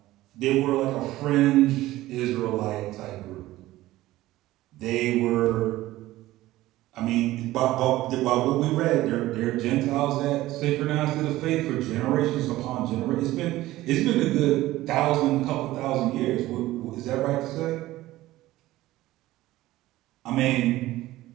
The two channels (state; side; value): quieter; left; 16.5 dB